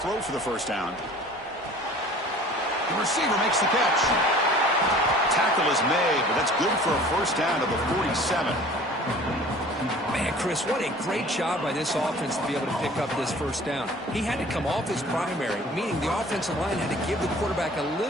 for the first down. The receiver makes the catch. Tackle is made, but that's good for a first down to the 47. Man, Chris, what a great job by this offense to be able to pick up this first down. He had to come off his primary, meaning the offensive line had to give the quarterback a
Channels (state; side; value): normal; both; correlation 0.47